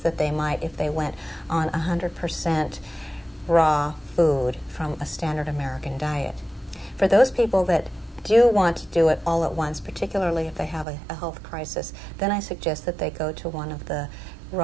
they might if they went on 100% raw food from a standard American diet. For those people that do want to do it all at once, particularly if they have a health crisis, then I suggest that they go to one of the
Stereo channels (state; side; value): drops out; left; at 10.9 s